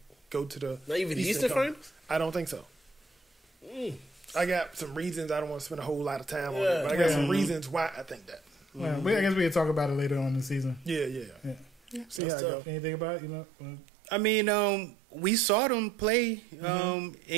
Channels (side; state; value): left; drops out; at 12.2 s